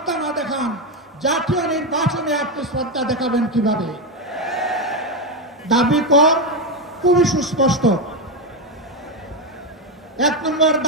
না দেখান, জাতীয় নির্বাচনে আপনি শ্রদ্ধা দেখাবেন কিভাবে? দাবি কর খুবই সুস্পষ্ট। 1 নম্বর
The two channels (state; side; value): normal; both; correlation 0.09